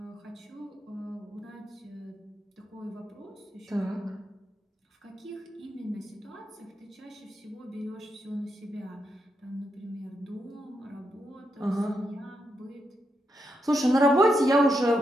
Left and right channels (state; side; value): normal; both; correlation 0.83